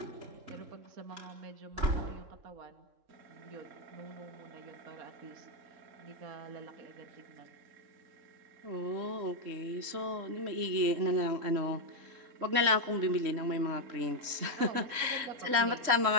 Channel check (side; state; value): left; late; 3.7 ms